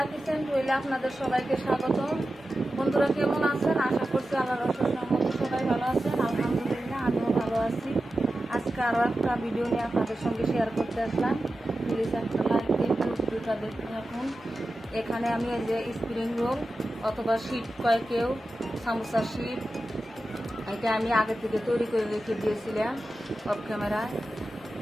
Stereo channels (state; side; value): normal; both; correlation 0.93